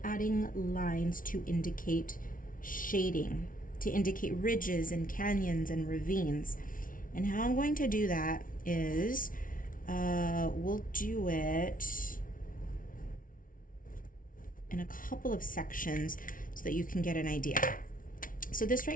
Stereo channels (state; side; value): late; right; 0.39 ms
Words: adding lines to indicate shading, to indicate ridges and canyons and ravines. And how I'm going to do that is we'll do it in a couple of sections so that you can get an idea. So this